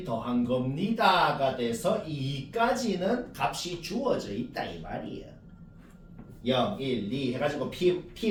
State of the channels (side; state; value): both; identical; correlation 1.00